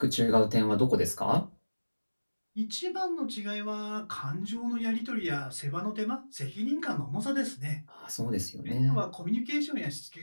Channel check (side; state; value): both; inverted; correlation -1.00